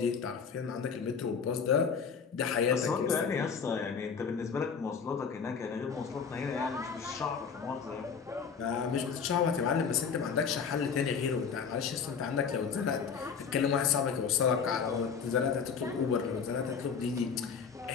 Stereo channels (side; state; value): right; quieter; 6.2 dB